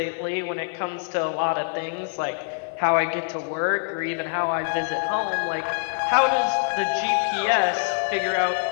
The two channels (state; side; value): silent; right; digital silence